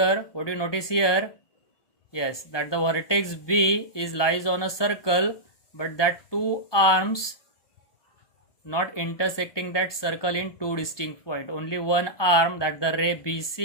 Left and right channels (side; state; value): right; late; 1.2 ms